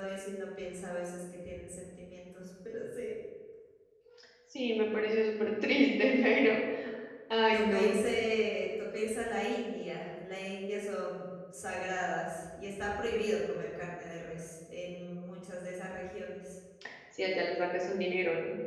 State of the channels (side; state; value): both; identical; correlation 1.00